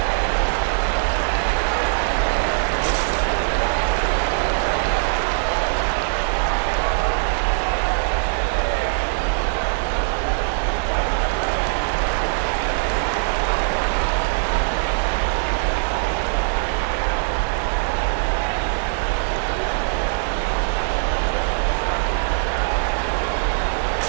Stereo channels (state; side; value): silent; left; digital silence